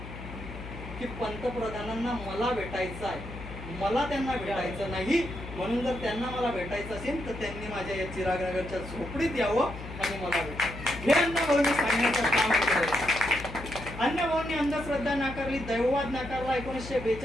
की पंतप्रधानांना मला भेटायचं आहे, मला त्यांना भेटायचं नाही. म्हणून जर त्यांना मला भेटायचं असेल तर त्यांनी माझ्या या चिरागनगरच्या झोपडीत यावं आणि मला भेटावं. हे अण्णाभाऊंनी सांगण्याचं काम केलं. अण्णाभाऊंनी अंधश्रद्धा नाकारली, दैववाद नाकारला.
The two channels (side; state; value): left; noise; hum, 11 dB below the sound